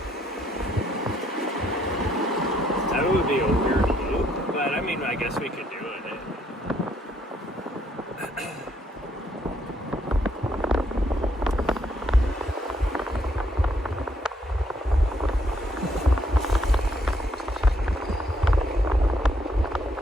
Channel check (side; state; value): both; normal; correlation 0.71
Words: That would be a weird loop. But I mean, I guess we could do it.